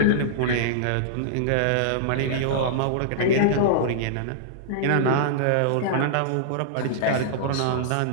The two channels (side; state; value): both; different; correlation -0.02